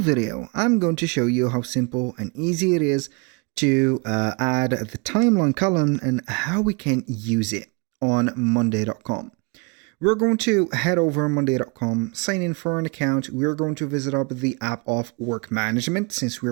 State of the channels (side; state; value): left; quieter; 30.9 dB